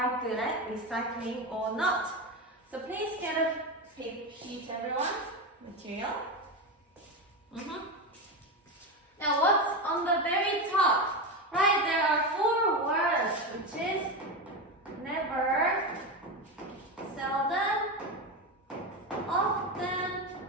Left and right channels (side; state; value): both; normal; correlation 0.16